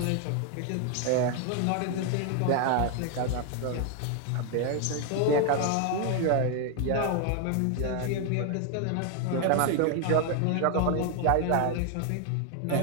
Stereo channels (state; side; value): different; both; correlation 0.00